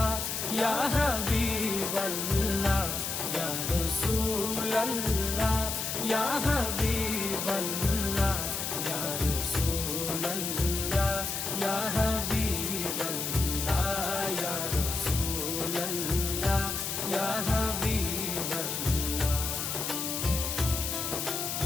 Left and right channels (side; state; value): left; noise; hiss, 2 dB below the sound